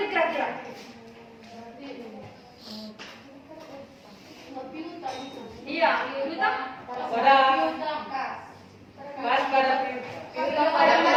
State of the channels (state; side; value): identical; both; correlation 1.00